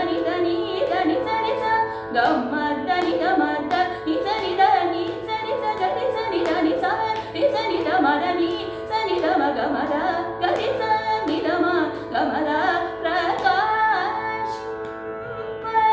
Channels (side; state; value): both; identical; correlation 1.00